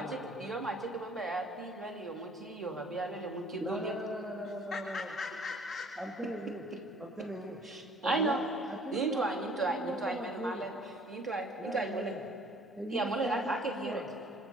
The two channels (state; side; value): normal; both; correlation 0.54